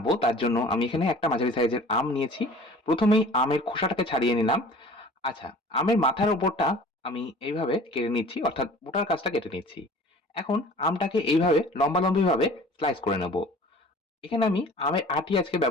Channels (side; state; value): both; normal; correlation 0.46